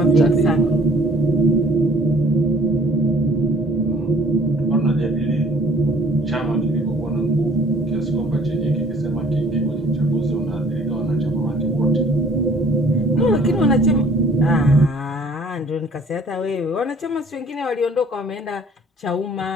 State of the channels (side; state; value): both; normal; correlation 0.55